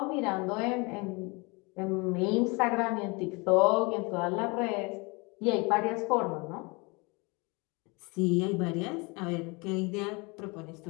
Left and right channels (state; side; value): quieter; right; 28.1 dB